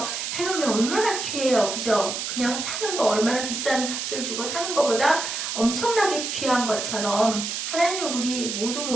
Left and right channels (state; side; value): noise; right; hiss, 4 dB below the sound